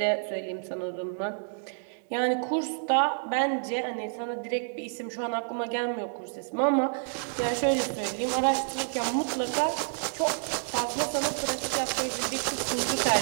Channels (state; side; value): silent; left; digital silence